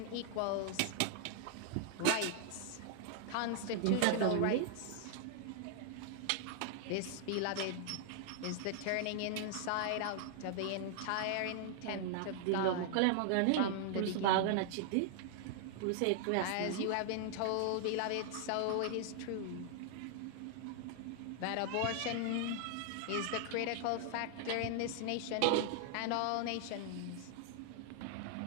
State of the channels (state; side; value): different; both; correlation 0.00